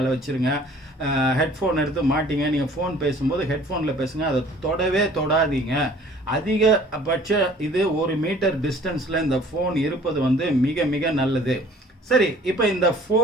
வச்சுருங்க. ஹெட்ஃபோன் எடுத்து மாட்டிங்க. நீங்கள் ஃபோன் பேசும்போது ஹெட்ஃபோனில் பேசுங்க, அதை தொடாதீங்க. அதிகபட்ச இது 1 மீட்டர் டிஸ்டன்ஸில் இந்த ஃபோன் இருப்பது வந்து மிக மிக நல்லது. சரி, இப்போ இந்த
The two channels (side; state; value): both; normal; correlation 0.52